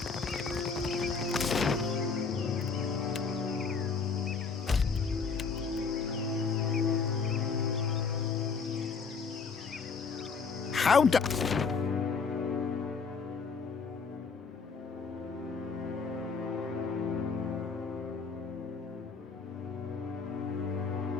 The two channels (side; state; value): right; quieter; 5.2 dB